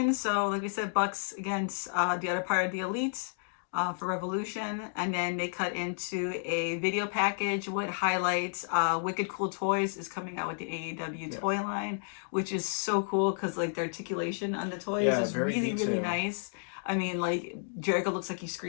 So like we said, Bucks against the other part of the Elite for Revolution, and then they cut into a video package with highlights. Wicked Cool Toys is coming out with the AEW Yeah. toy line, which is so cool because like the articulation on the toys Yeah, is very really detailed. nice. I mean, like Jericho looks like he's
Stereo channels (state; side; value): silent; right; digital silence